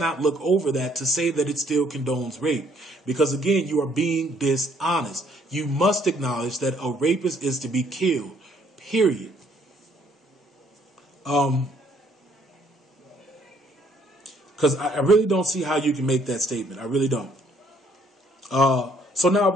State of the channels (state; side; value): normal; both; correlation 0.65